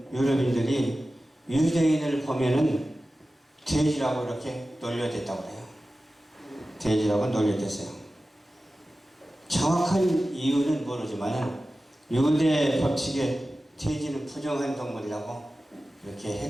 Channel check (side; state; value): both; normal; correlation 0.95